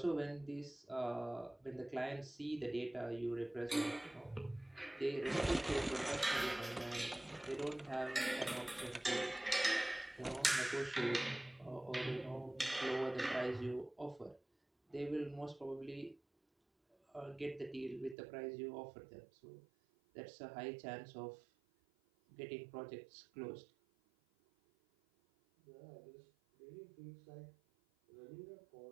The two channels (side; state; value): left; drops out; at 18.2 s